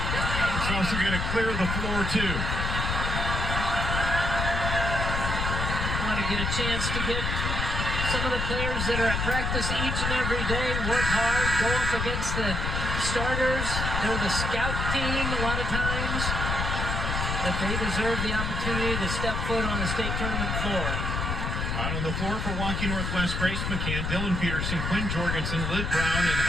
He's also going to clear the floor too. Want to get a chance to get some of the players that are at practice each and every day, work hard, go up against the starters. They're the scout team a lot of times, but they deserve the opportunity to step foot on the state tournament floor. Out on the floor for Waukee Northwest, Grace McCann, Dylan Peterson, Quinn Jorgensen, Liv Brown, and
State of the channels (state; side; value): noise; left; rumble, 1 dB below the sound